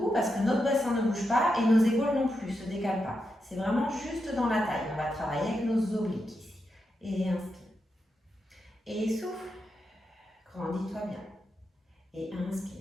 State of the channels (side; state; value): both; normal; correlation 0.86